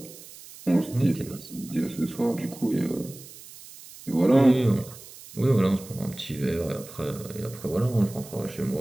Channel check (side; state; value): right; noise; hiss, 17 dB below the sound